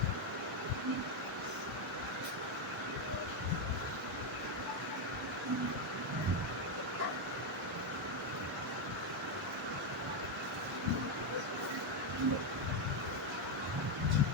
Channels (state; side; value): normal; both; correlation 0.05